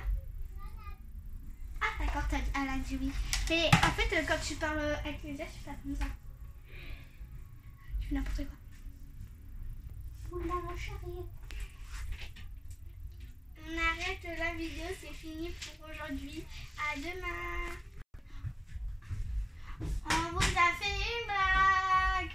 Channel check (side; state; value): both; identical; correlation 1.00